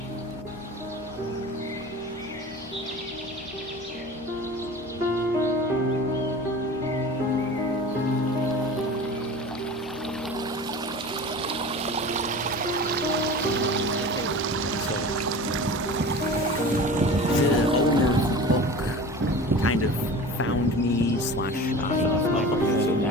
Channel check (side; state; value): both; normal; correlation 0.36